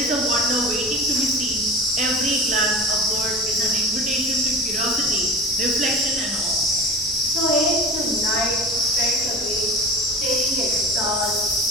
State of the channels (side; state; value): both; normal; correlation 0.33